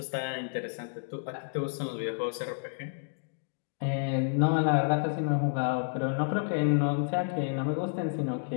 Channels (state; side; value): silent; right; digital silence